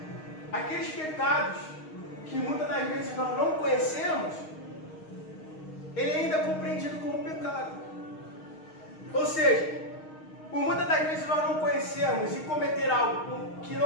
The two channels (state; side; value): late; right; 6.4 ms